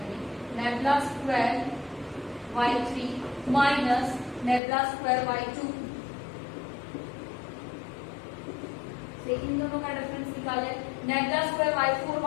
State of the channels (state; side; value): drops out; right; at 4.6 s